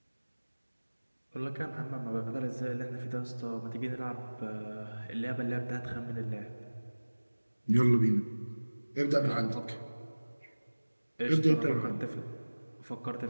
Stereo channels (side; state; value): both; inverted; correlation -1.00